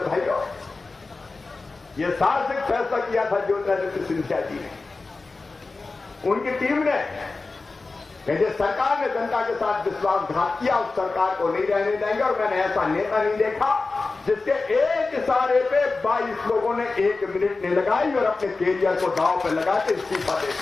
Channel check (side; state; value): right; quieter; 3.8 dB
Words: भाइयों, ये साहसिक फैसला किया था ज्योतिरादित्य सिंधिया जी ने, उनकी टीम ने, कि जिस सरकार ने जनता के साथ विश्वासघात किया उस सरकार को नहीं रहने देंगे। और मैंने ऐसा नेता नहीं देखा जिसके एक इशारे पे 22 लोगों ने 1 मिनट नहीं लगाई और अपने कैरियर को दांव पे लगा के इस्तीफा दे